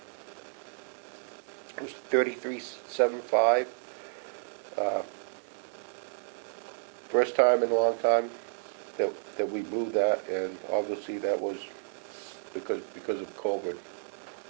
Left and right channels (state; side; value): silent; left; digital silence